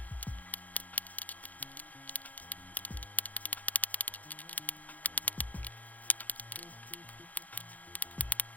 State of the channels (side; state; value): right; late; 0.078 ms